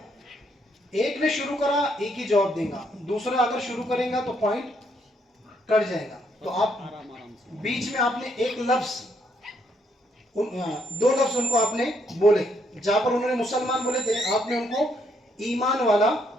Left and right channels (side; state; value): both; normal; correlation 0.73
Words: एक ने शुरू करा, एक ही जवाब देगा, दूसरा अगर शुरू करेगा तो पॉइंट कट जाएगा। तो आप बीच में आपने एक लफ्ज, दो लफ्ज उनको आपने बोले। जहां पर उन्होंने मुसलमान बोले थे, आपने उनको ईमान वाला